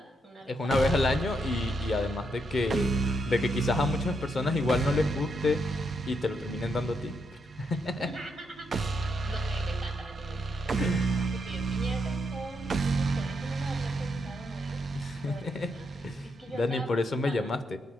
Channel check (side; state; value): both; normal; correlation 0.79